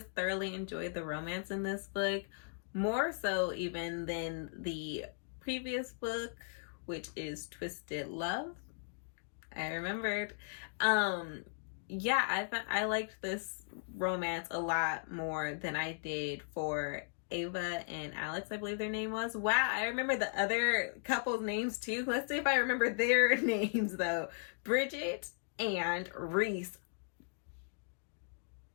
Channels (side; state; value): right; silent; digital silence